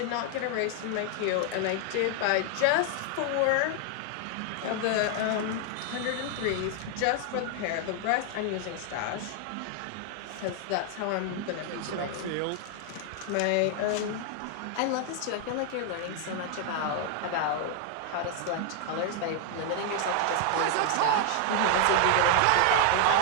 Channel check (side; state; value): both; different; correlation 0.00